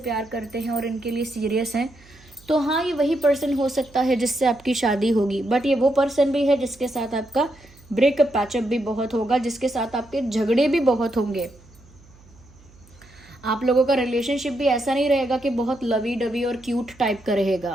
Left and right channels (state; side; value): noise; right; hum, 26 dB below the sound